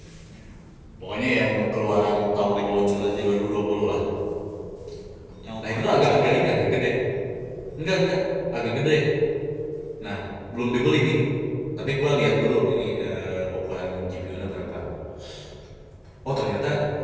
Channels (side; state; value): both; identical; correlation 1.00